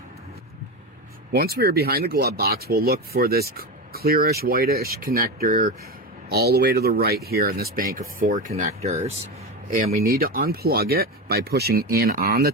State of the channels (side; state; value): both; normal; correlation 0.19